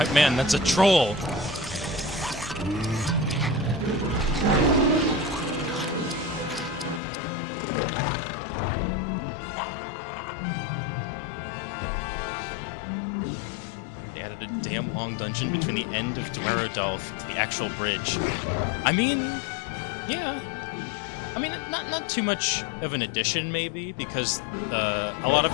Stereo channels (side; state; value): right; drops out; at 7.0 s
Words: man, that's a troll! Added a damn long dungeon between the end of Dwerodolf to the actual bridge. I mean, yeah. I mean, not too much of an addition, maybe, because a lot